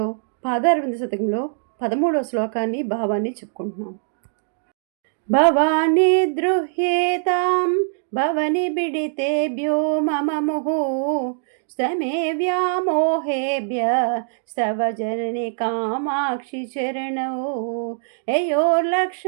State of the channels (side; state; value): left; silent; digital silence